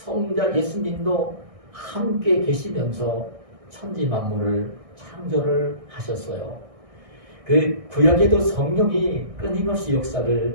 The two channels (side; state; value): left; late; 1.6 ms